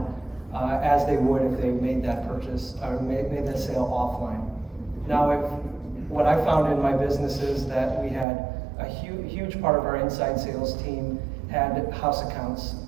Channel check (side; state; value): left; drops out; at 8.2 s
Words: as they would if they made that purchase or made that sale offline. Now, what I found in my business is that we had a huge part of our inside sales team had house accounts